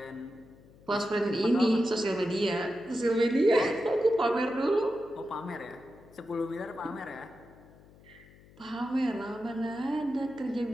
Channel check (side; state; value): left; noise; hum, 24 dB below the sound